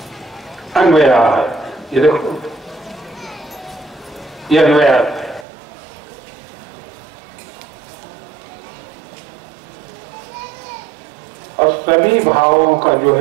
अन्वया है। ये देखो ये अन्वया है। और सभी भावों का जो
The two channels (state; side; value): drops out; left; at 5.5 s